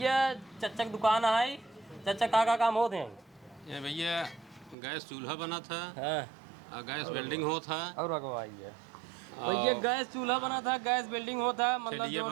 चच्चा की दुकान है चच्चा का काम होते हैं ये भैया गैस चूल्हा बना था हाँ गैस वेल्डिंग हो था और भैया गैस चूल्हा बना था गैस बिल्डिंग होता मतलब ठेलिया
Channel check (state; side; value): drops out; left; at 4.8 s